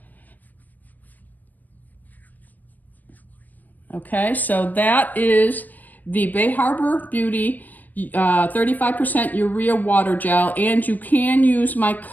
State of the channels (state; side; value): late; right; 0.083 ms